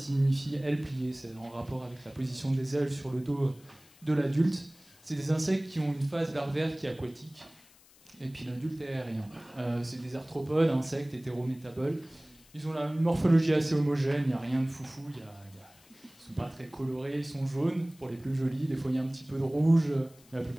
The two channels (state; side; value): noise; left; hiss, 26 dB below the sound